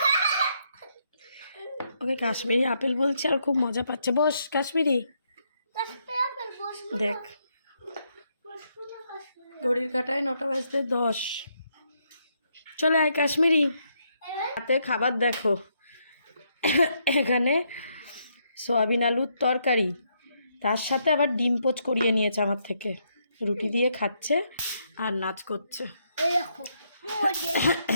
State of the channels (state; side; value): inverted; both; correlation -0.76